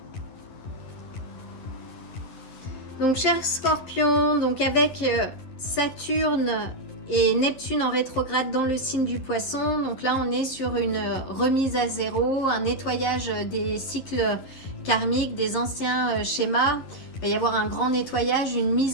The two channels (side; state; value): right; late; 11 ms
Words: Donc, cher Scorpion, donc avec Saturne et Neptune en rétrograde dans le signe du Poisson. Donc là, on est sur une remise à zéro, un nettoyage des cycles karmiques, des anciens schémas. Il va y avoir un grand nettoyage, une